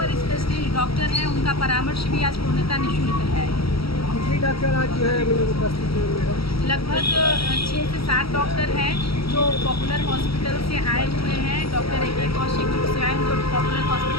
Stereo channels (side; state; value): right; late; 0.75 ms